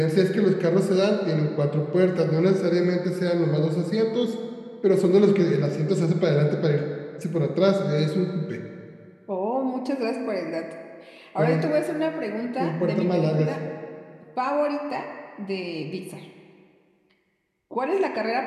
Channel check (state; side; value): identical; both; correlation 1.00